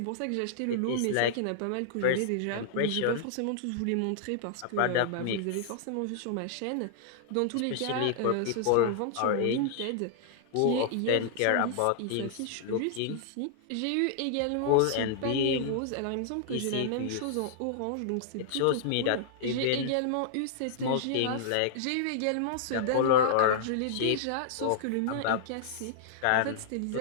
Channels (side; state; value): both; different; correlation -0.01